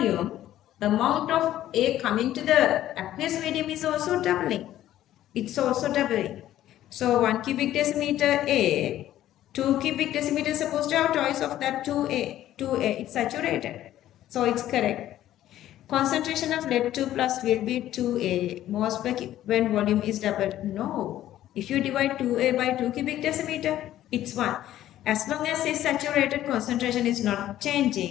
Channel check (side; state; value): right; quieter; 13.0 dB